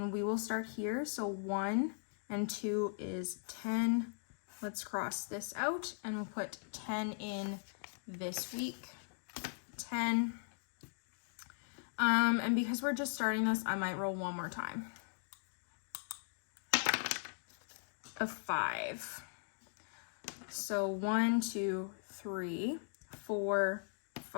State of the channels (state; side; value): silent; right; digital silence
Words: we will start here. So 1 and 2 is 10. Let's cross this out and we'll put 10 in this week. 10. And because we're just starting this, I might roll one more time. A 5. So 1, 2, 3, 4,